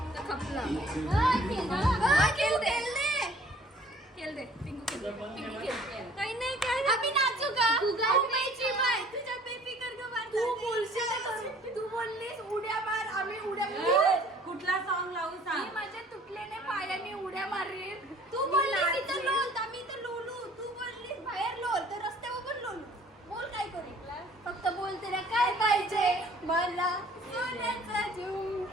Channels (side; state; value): both; normal; correlation 0.54